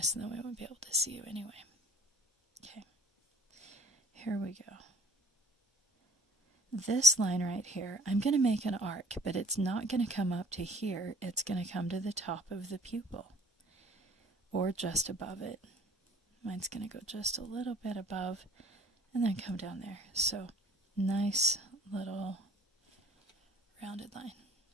and then we won't be able to see you anyway. Okay. Here we go. This line right here, I'm going to make an arc, but it's not going to come up to here. It's going to come to the top of the pupil, or just above it. Mine's going to go just a little bit above and then come down there. So nice little rounded line.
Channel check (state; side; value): normal; both; correlation 0.51